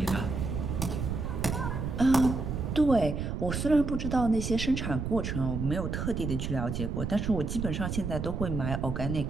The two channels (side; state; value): right; noise; rumble, 3 dB below the sound